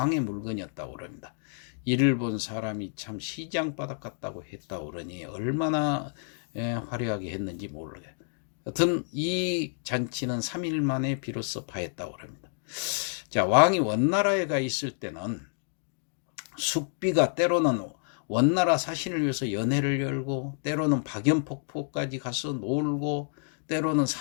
물건이었다고 그럽니다. 이를 본 사람이 참 시장바닥 같다고 했다고 그러니 얼마나 화려하게 했는지 모르겠어요. 여튼 이 잔치는 3일 만에 비로소 파했다고 합니다. 자, 왕이 원나라에 가 있을 때는 숙비가 때로는 원나라 사신을 위해서 연회를 열고 때로는 박연폭포까지 가서 놀고 때로는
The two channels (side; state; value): right; silent; digital silence